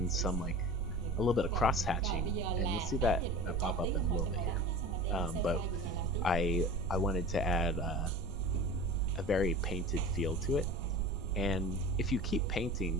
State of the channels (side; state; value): both; normal; correlation 0.36